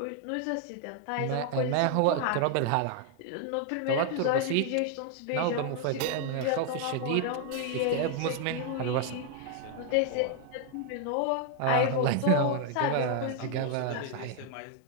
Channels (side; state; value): both; different; correlation 0.00